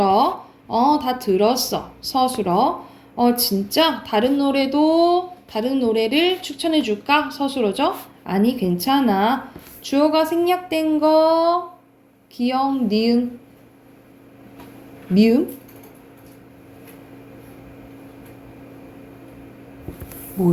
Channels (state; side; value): identical; both; correlation 1.00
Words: 다 들었어. 서술어. 진짜? 다른 노래를 추천해줄까? 서술어죠? 아니, 괜찮아. 주어가 생략된 거, 기억, 니은, 미음?